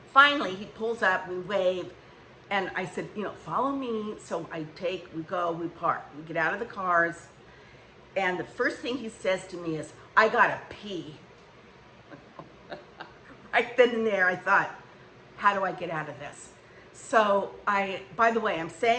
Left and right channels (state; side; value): identical; both; correlation 1.00